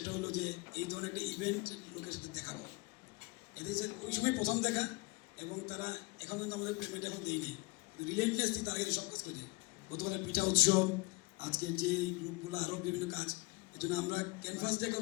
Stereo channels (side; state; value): right; quieter; 26.6 dB